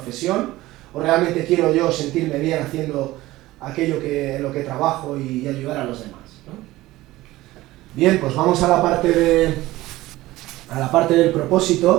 ¿O realmente quiero yo sentirme bien haciendo aquello en lo que trabajo y ayudar a los demás, ¿no? Bien, pues vamos a la parte del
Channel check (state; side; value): quieter; left; 17.5 dB